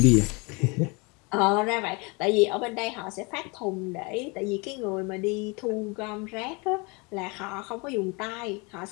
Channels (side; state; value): right; quieter; 29.1 dB